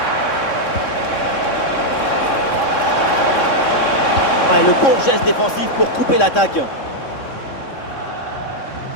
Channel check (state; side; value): late; right; 3.6 ms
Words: Ah, et le bon geste défensif pour couper l'attaque.